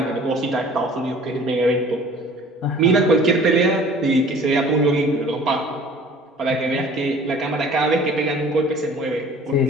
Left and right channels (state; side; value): normal; both; correlation 0.48